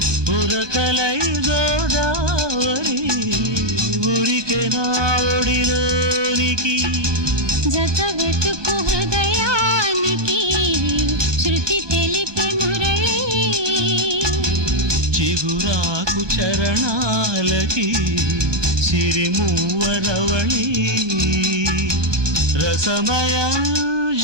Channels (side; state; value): left; late; 1.2 ms